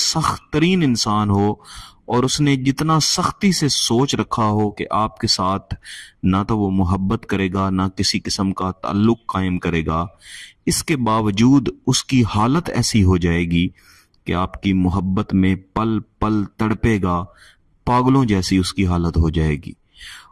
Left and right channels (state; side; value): identical; both; correlation 1.00